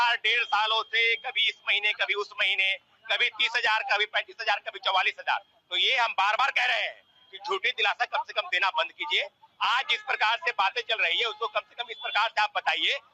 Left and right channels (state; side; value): identical; both; correlation 1.00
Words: 1.5 सालों से कभी इस महीने कभी उस महीने, कभी 30,000 कभी 35,000 कभी 44,000, तो ये हम बार बार कह रहे हैं कि झूठी दिलासा कम से कम देना बंद कीजिए। आज जिस प्रकार से बातें चल रही है उसको कम से कम इस प्रकार से आप बताइए